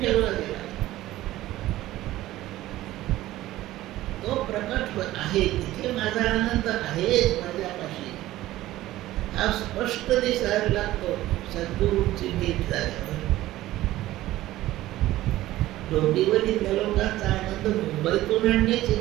ठेवला गेला. तो प्रकट आहे, तिथे माझा आनंद आहेच माझ्यापाशी. हा स्पष्ट दिसायला लागतो सद्गुरूंची भेट झाल्यावर. डोंबिवलीतल्या लोकांचा आनंद मुंबईतून आणण्याची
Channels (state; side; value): quieter; left; 15.7 dB